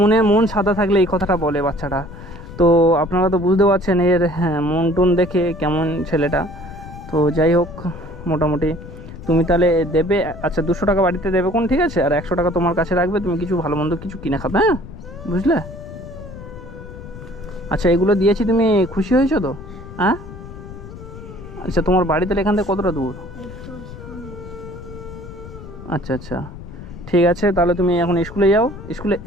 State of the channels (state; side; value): noise; left; rumble, 14 dB below the sound